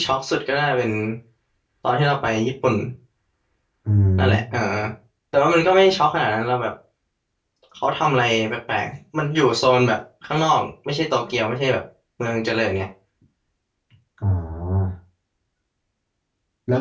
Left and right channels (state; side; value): identical; both; correlation 1.00